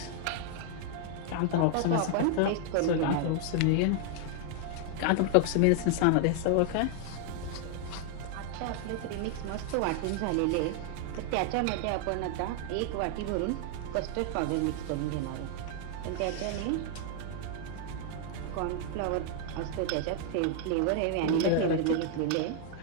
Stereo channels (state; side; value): different; both; correlation 0.00